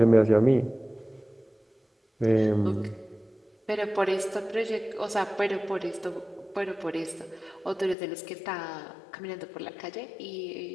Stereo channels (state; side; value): drops out; right; at 8.0 s